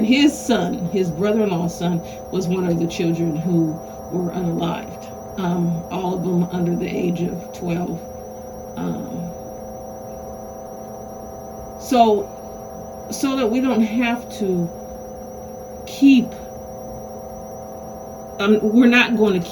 his son, his brother-in-law's son, was one of the children who were unalived. All of them under the age of 12. So that we don't have to keep,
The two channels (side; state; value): both; identical; correlation 1.00